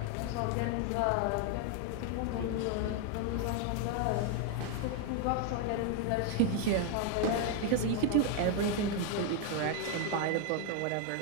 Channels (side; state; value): both; different; correlation 0.01